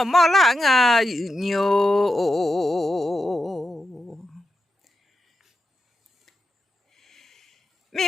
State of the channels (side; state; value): both; normal; correlation 0.88